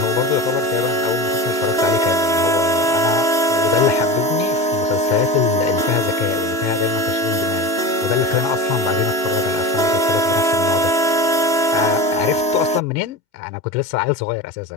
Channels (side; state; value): left; late; 2.9 ms